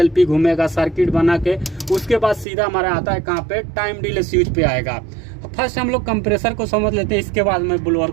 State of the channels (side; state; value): left; drops out; at 2.5 s